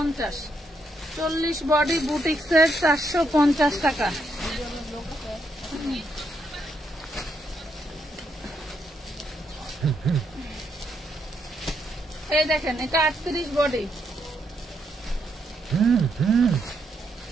40 বডি বুটিক্সের 450 টাকা। এই দেখেন, এটা 38 বডি,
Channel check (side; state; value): both; normal; correlation 0.77